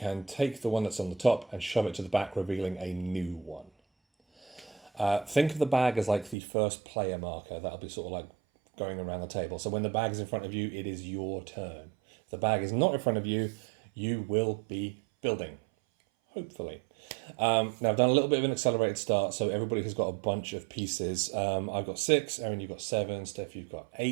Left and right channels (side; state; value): left; drops out; at 6.4 s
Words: take the one that's on the top and shove it to the back, revealing a new one. Think of the bag as like the first player marker. That'll be sort of like going around the table. So when the bag is in front of you, it is your turn. If the bag is not in front of you, you will be building, hopefully. Now I've done a little bit of an accelerated start, so everybody has got a bunch of pieces. I've got 6, Erin, you've got 7, Steph, you've got